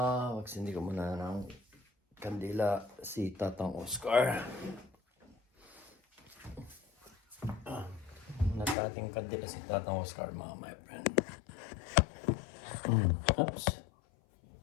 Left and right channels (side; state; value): right; drops out; at 8.8 s